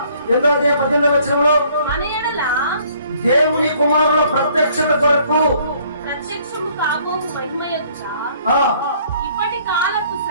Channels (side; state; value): both; inverted; correlation -0.61